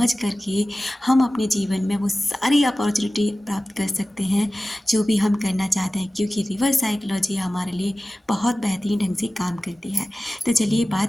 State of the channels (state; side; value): normal; both; correlation 0.96